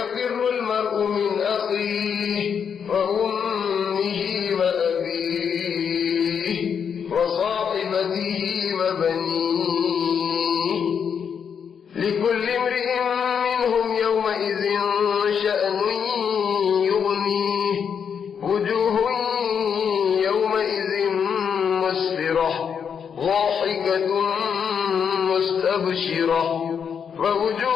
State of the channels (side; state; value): right; quieter; 7.2 dB